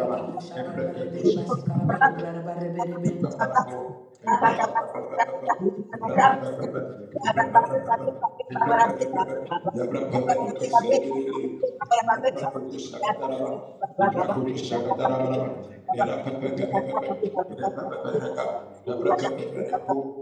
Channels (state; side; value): identical; both; correlation 1.00